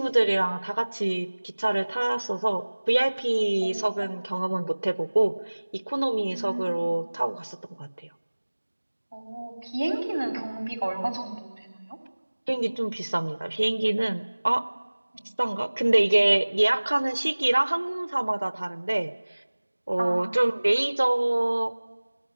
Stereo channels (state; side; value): inverted; both; correlation -1.00